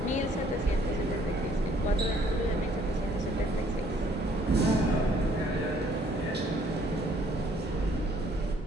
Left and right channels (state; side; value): normal; both; correlation 0.62